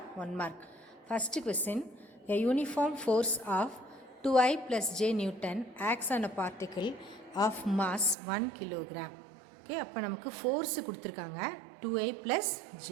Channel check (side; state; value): left; drops out; at 8.2 s